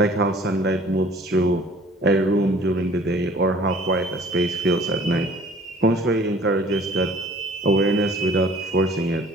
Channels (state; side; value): normal; both; correlation 0.51